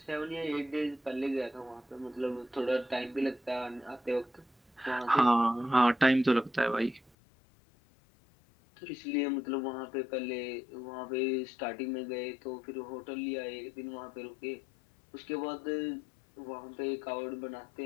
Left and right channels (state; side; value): drops out; right; at 7.1 s